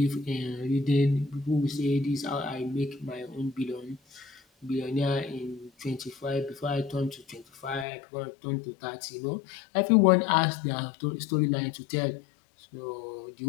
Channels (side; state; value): right; drops out; at 7.9 s